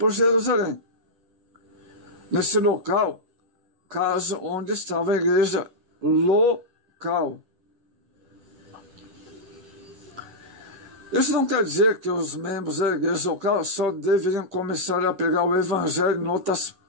Jerusalém. Nesse local, caso onde estava a igreja local. Isso não quer dizer que os membros da igreja local só deveriam começar a pregar o evangelho em outras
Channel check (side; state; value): left; late; 10 ms